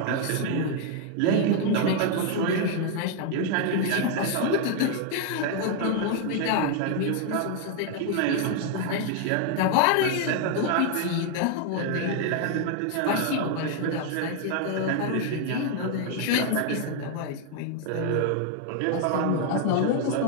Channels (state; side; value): different; both; correlation 0.00